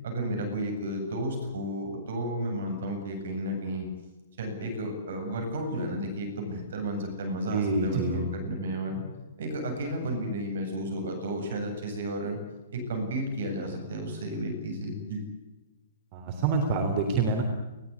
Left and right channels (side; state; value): both; inverted; correlation -0.36